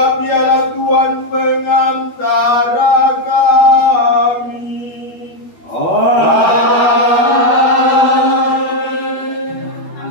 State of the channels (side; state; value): right; late; 12 ms